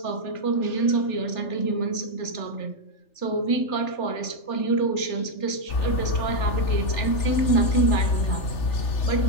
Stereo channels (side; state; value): right; late; 3.4 ms